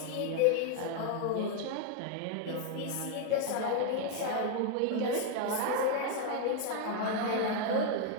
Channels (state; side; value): different; both; correlation 0.00